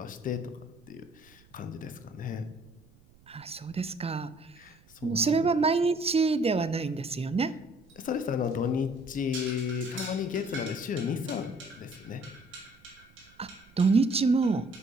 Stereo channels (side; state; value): right; noise; rumble, 28 dB below the sound